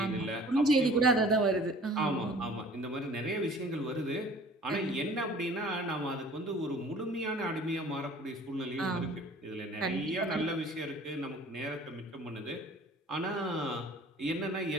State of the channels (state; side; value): normal; both; correlation 0.49